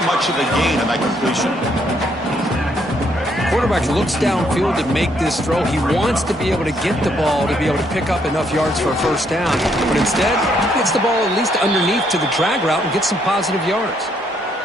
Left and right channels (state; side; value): normal; both; correlation 0.71